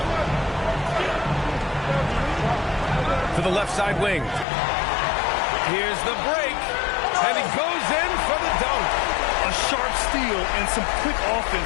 To the left side wing. Here's the break. And he goes in for the dunk. A sharp steal and some quick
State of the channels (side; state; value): right; drops out; at 4.5 s